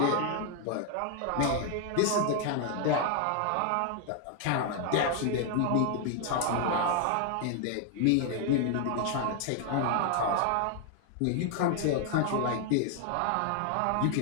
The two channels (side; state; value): both; different; correlation 0.00